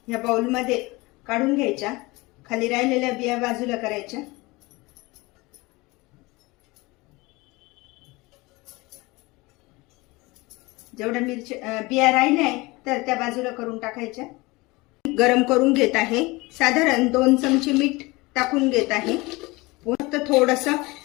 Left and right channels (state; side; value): quieter; right; 23.0 dB